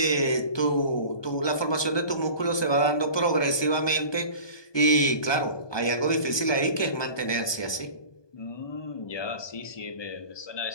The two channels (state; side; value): late; right; 1.2 ms